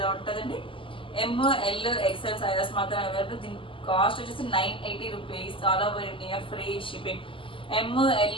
ఉంటుందండి. ML XL సైజెస్ మాత్రం అవైలబుల్. దీని కాస్ట్ వచ్చేసి 980 rupees. All over India free shipping.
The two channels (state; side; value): late; right; 0.25 ms